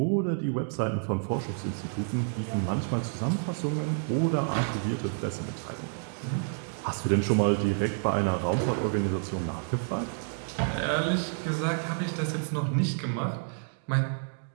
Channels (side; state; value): left; silent; 58 dB below the other